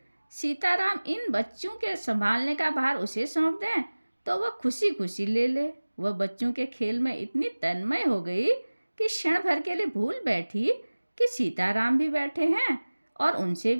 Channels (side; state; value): both; inverted; correlation -1.00